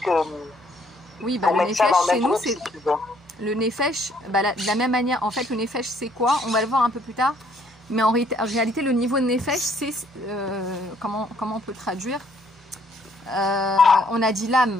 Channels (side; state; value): both; normal; correlation 0.65